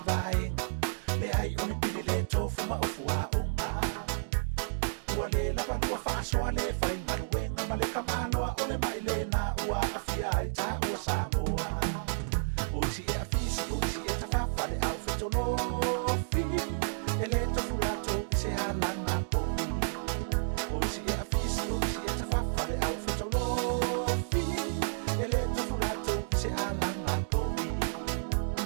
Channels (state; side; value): silent; left; digital silence